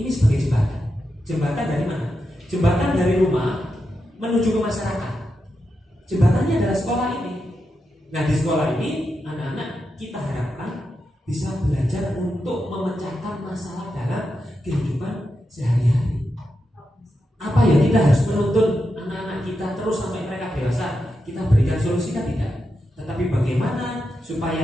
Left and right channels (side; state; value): both; normal; correlation 0.87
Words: sebagai jembatan. Jembatan dari mana? Jembatan dari rumah menuju ke masyarakat. Jembatannya adalah sekolah ini. Nah, di sekolah ini anak-anak kita harapkan bisa belajar untuk memecahkan masalah dalam kehidupan sehari-hari. Apa ya, kita harus menuntun anak-anak kita terus sampai mereka dewasa kita berikan solusi kan tidak, tetapi bagaimana